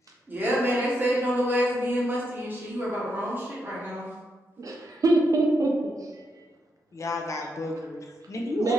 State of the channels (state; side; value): normal; both; correlation 0.81